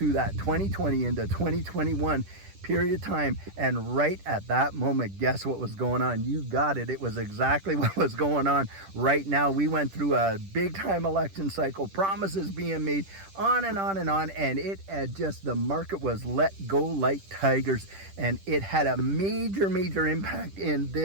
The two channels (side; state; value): left; late; 10 ms